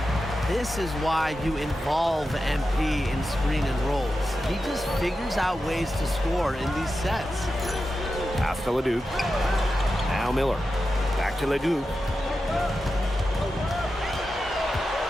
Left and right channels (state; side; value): normal; both; correlation 0.91